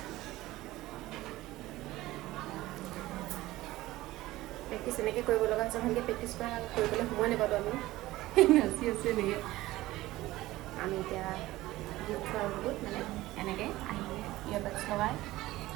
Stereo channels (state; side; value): quieter; left; 17.3 dB